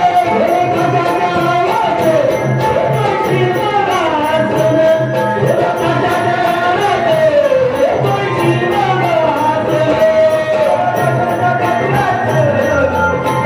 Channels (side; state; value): both; identical; correlation 1.00